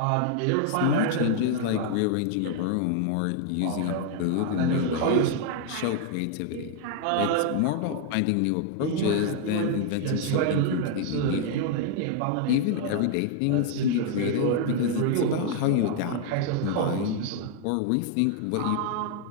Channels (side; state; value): both; different; correlation 0.00